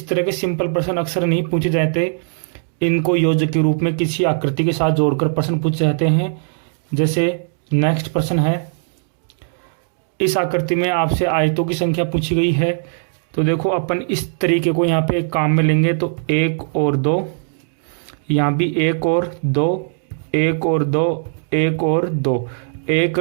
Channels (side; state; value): left; silent; digital silence